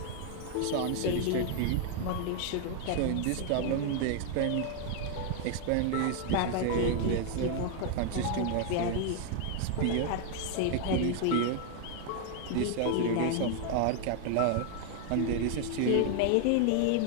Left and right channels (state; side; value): different; both; correlation 0.00